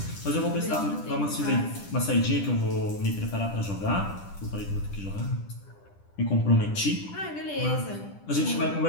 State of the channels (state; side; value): late; right; 10 ms